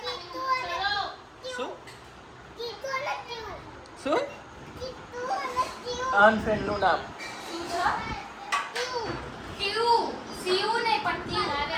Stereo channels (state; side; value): identical; both; correlation 1.00